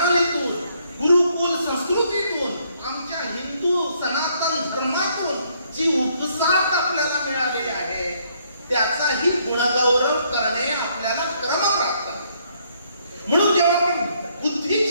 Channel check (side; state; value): both; inverted; correlation -0.69